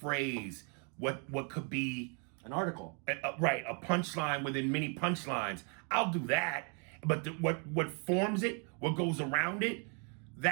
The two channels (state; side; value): quieter; left; 38.9 dB